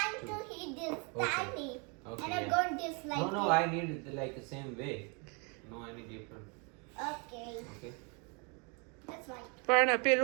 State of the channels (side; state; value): left; quieter; 33.5 dB